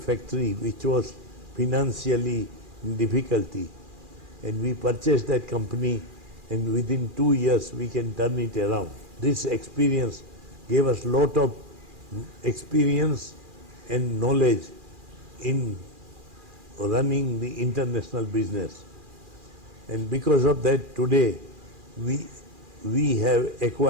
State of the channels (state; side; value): late; left; 2.4 ms